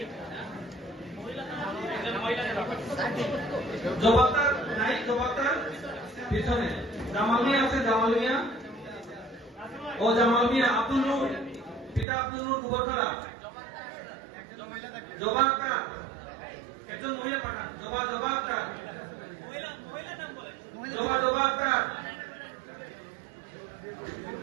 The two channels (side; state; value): left; drops out; at 12.1 s